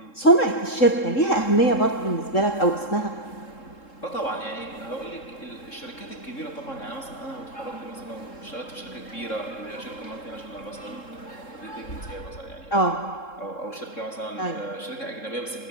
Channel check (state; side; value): late; right; 3.7 ms